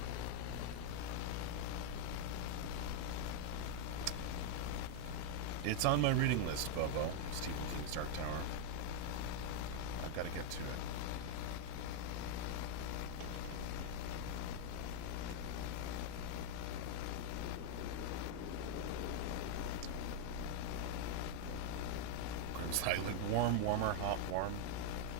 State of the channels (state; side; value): different; both; correlation 0.00